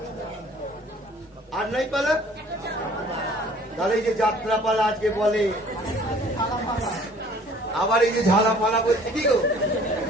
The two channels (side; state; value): both; normal; correlation 0.53